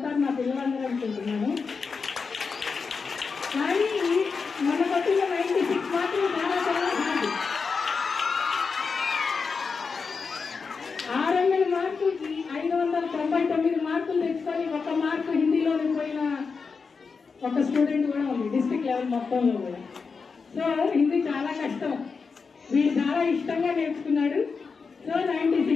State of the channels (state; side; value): quieter; right; 5.1 dB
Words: నా పిల్లలందరూ అనుకుంటున్నాను. కానీ మన కొట్టిన 96 మార్కులు చాలా చాలా హార్డ్. 600 మార్కులకి 599 మార్కులు తెచ్చుకొని 1 మార్కు హిందీలోకి పోయిన ఒక స్టూడెంట్ కూడా ఉంది డిస్ట్రిక్ట్ లెవెల్ మొత్తంలో కూడా. సో హిందీ చాలా కష్టం. వీడు చాలా ఇష్టంగా నేర్చుకున్నాడు. సో